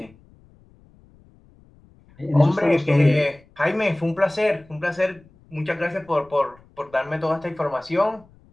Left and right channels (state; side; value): noise; left; rumble, 28 dB below the sound